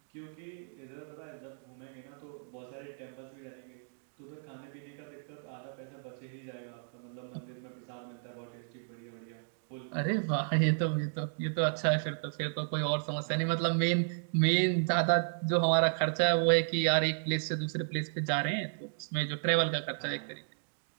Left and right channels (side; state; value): left; silent; digital silence